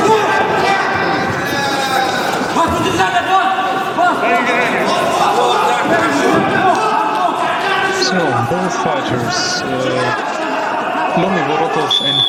Both fighters, Vorotov and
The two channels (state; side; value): identical; both; correlation 1.00